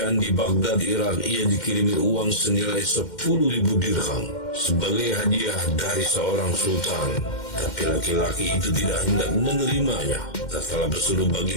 di Baghdad, Irak, ia dikirimi uang senilai 10.000 dirham sebagai hadiah dari seorang sultan. Tapi laki-laki itu tidak hendak menerimanya. Tatkala bersuruh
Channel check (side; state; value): right; late; 2.1 ms